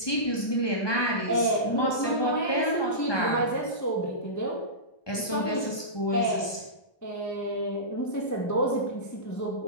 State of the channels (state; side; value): late; right; 1.2 ms